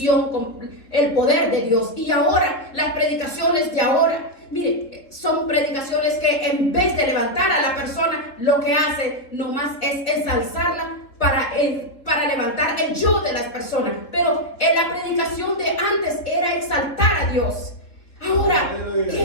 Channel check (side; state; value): right; late; 3.7 ms